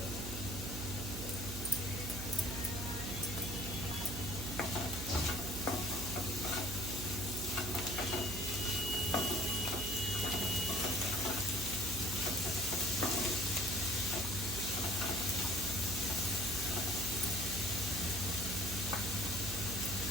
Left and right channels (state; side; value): noise; right; hum, 7 dB below the sound